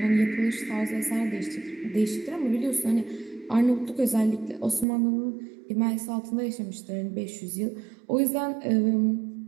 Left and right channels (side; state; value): left; drops out; at 4.9 s